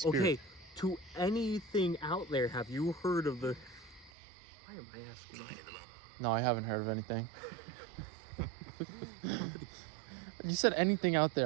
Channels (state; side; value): drops out; left; at 4.1 s